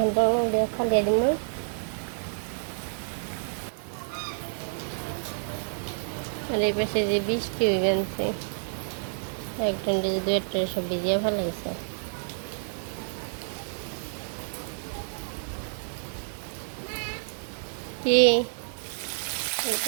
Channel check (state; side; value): silent; left; 59 dB below the other